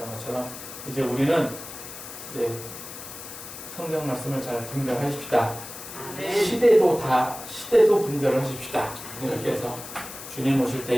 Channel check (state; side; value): noise; left; hiss, 12 dB below the sound